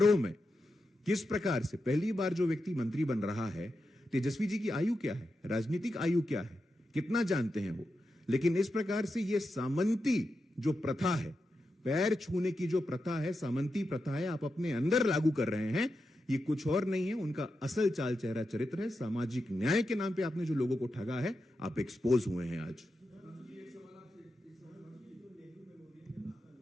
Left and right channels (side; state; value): both; normal; correlation 0.88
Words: में किस प्रकार से पहली बार जो व्यक्ति मंत्री बन रहा है, तेजस्वी जी की आयु क्या है, राजनीतिक आयु क्या है, कितना जानते हैं वो। लेकिन इस प्रकार से ये सामंती जो प्रथा है, पैर छूने की जो प्रथा है, सामंती प्रथा है, आप अपने अंदर लागू कर रहे हैं। ये कुछ और नहीं है, उनका असल चाल चेहरा चरित्र है। सामाजिक न्याय के नाम पे आपने जो लोगों को ठगा है, आप एक्सपोज हुए हैं आज।